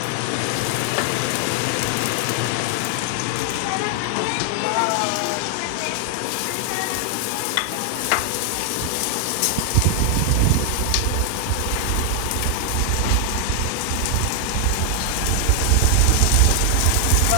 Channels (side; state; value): both; different; correlation 0.00